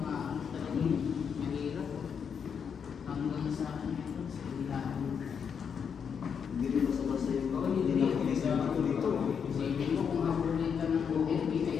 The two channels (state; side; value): quieter; right; 6.9 dB